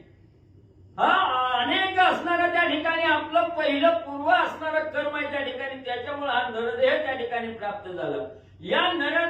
हा अनेक असणारा त्या ठिकाणी आपलं पहिलं पूर्व असणारं कर्म आहे त्या ठिकाणी, त्याच्यामुळे हा नरदेह त्या ठिकाणी प्राप्त झाला. या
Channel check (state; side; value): identical; both; correlation 1.00